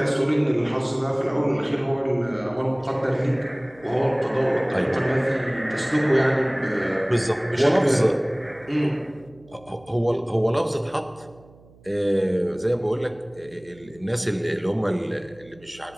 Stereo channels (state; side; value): noise; right; hum, 26 dB below the sound